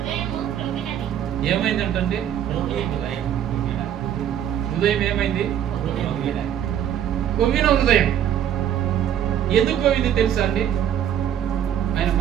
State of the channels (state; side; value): quieter; left; 10.1 dB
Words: క్రొవ్వినది. ఏమైందంటే హృదయం ఏమైంది? కొవ్విన హృదయం. ఎందుకు కొవ్వింది తెలుసా అండి? ఆయన